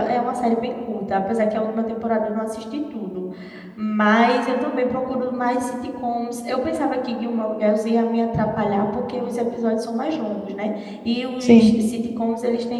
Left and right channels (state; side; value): identical; both; correlation 1.00